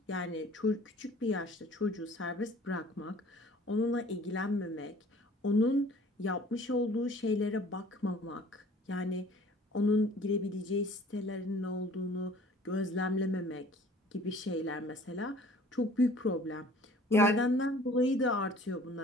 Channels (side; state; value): both; normal; correlation 0.51